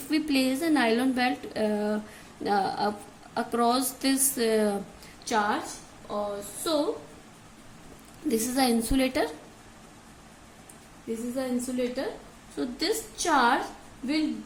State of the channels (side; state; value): both; identical; correlation 1.00